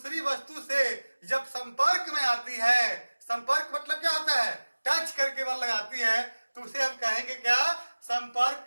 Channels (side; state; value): both; inverted; correlation -1.00